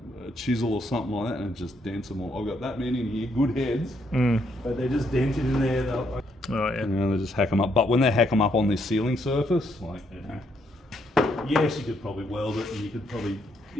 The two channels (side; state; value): both; normal; correlation 0.74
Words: chisel or something like that and it just dents them all. I've got that many in here, good heads, but they're just dented in there. Oh, yeah. You know, they just hack them up. But when they hack them up on this sealing surface, like, you know, yes, you could probably weld it and you could probably,